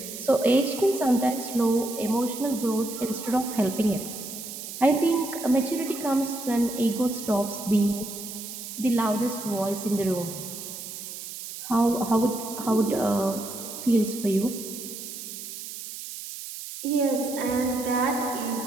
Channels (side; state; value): right; noise; hiss, 10 dB below the sound